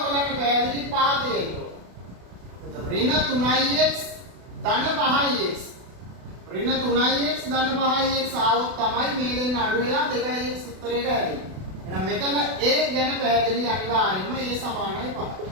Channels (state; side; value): late; left; 32 ms